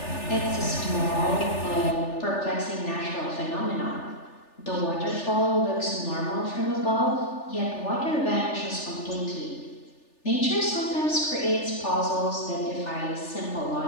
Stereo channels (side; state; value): right; late; 3.4 ms